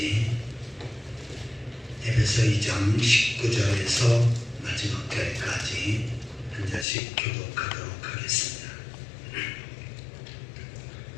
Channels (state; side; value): drops out; right; at 6.9 s